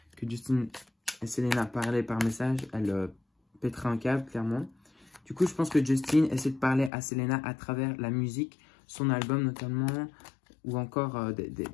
que Justin et Selena parlaient par message, elle pèterait un câble, clairement. Du coup, je pense que Justin essaie de parler à Selena à travers la musique, son album notamment, ou encore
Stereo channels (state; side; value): drops out; right; at 6.9 s